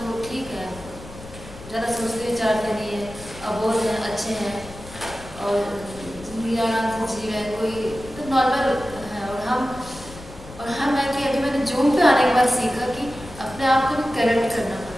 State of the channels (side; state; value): left; noise; rumble, 16 dB below the sound